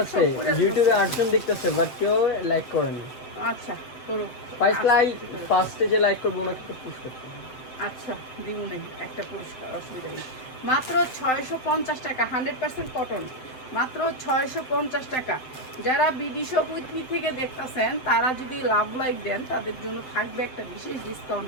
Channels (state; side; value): late; right; 7.7 ms